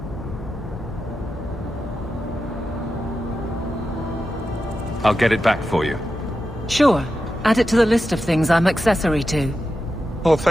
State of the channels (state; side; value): normal; both; correlation 0.90